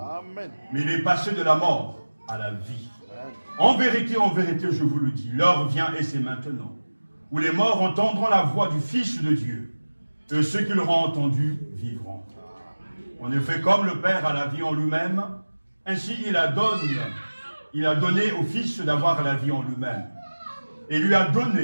Amen. Mais il est passé de la mort à la vie. Amen. En vérité, je vous le dis, l'heure vient et c'est maintenant, où les morts entendront la voix du Fils de Dieu, et ceux qui l'auront entendu vivront. En effet, comme le Père a la vie en lui-même, ainsi il a donné au Fils d'avoir la vie en lui-même, et lui a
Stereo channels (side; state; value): both; inverted; correlation -1.00